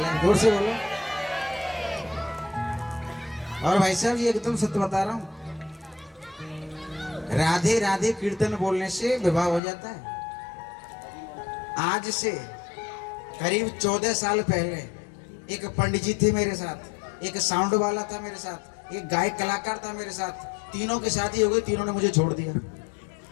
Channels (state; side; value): drops out; right; at 9.6 s